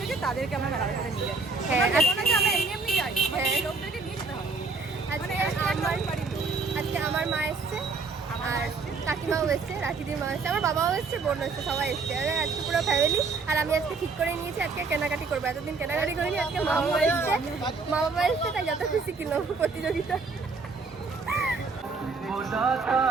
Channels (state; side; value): quieter; left; 4.2 dB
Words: তাদেরকে আমরা মেলার কাছে নিয়ে যাই। হ্যাঁ আমরা এমনি যাই, লোকদেরকে নিয়ে যেতে হবে। আজকে আমার মা এসছে, আর কাকিমাও এসছে, রাখিদির মা এসছে, আমার বাবাও এসছে, বোন এসছে, সবাই এসছে। আজকে পুরো ফ্যামিলি। আর আমি আজকে ঠিক করে নিয়েছি আজকে কেনাকাটি করবো। এতদিন কেনাকাটি করিনি, আজকে মা বাবা এসছে, তাই যত খুশি কিলো প্রতিযোগিতা।